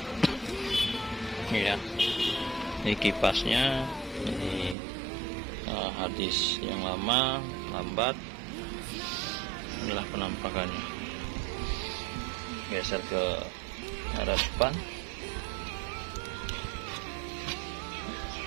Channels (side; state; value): left; drops out; at 4.8 s